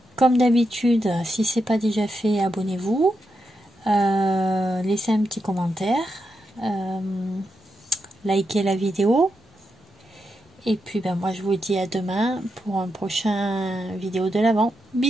Comme d'habitude, si c'est pas déjà fait, abonnez-vous. Laissez un petit commentaire. Likez la vidéo. Et puis ben moi je vous dis à demain pour un prochain vidéo de l'Avent.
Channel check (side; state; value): both; normal; correlation 0.85